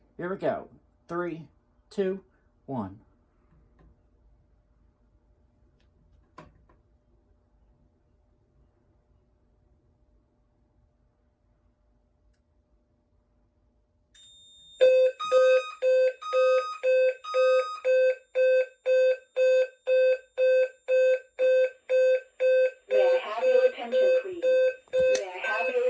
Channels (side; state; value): both; identical; correlation 1.00